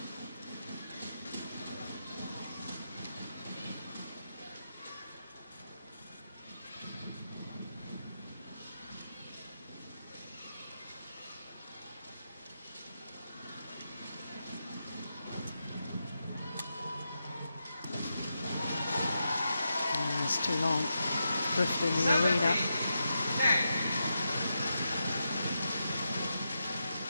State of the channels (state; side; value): inverted; both; correlation -0.87